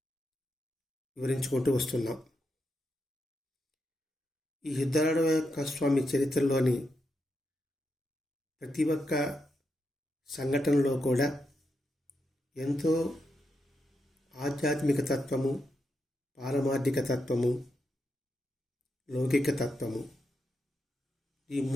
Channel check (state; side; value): normal; both; correlation 0.84